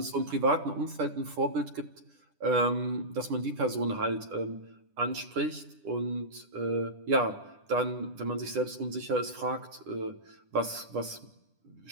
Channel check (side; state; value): left; late; 10 ms